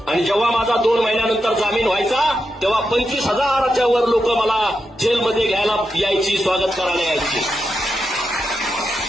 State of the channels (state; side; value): normal; both; correlation 0.87